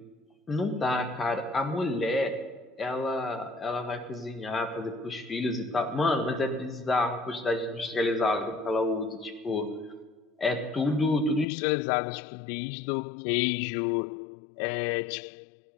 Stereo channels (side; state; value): right; drops out; at 11.5 s